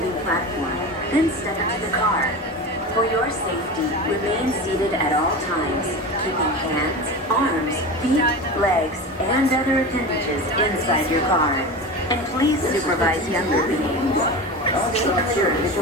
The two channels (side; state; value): both; normal; correlation 0.27